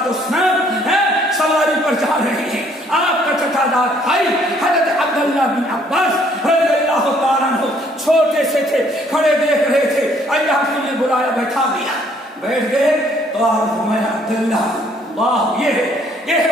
سواری پر جا رہے ہیں, آپ کا چچا داد بھائی حضرت عبداللہ بن عباس رضی اللہ تعالیٰ عنہ چھوٹے سے تھے, کھڑے دیکھ رہے تھے, اللہ نے بلایا, بیٹھا دیا, بیٹھ گئے تو آپ میں عبداللہ اللہ یہ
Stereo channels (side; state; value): both; normal; correlation 0.63